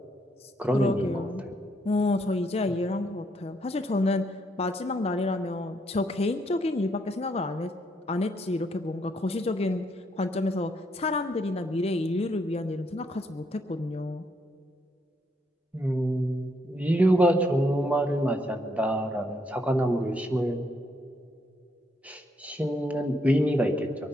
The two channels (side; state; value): both; normal; correlation 0.74